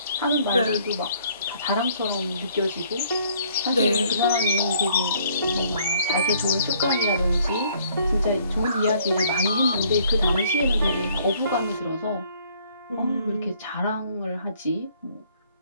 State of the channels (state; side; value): inverted; both; correlation -0.62